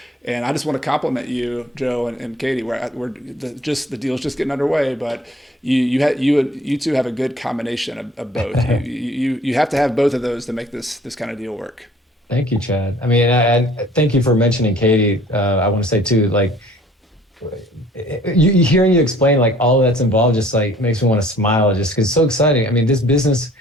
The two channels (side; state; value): both; normal; correlation 0.54